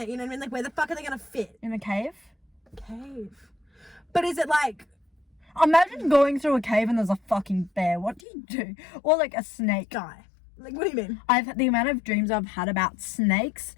You know what I mean? Like, where the fuck are they gonna fit? in a cave? Cave. But is it like? Imagine going through a cave and there's a fucking bear. What do you do? Or like a snake. Die. Like, what do you mean? The amount of dreams I've had about snakes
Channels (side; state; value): right; drops out; at 8.2 s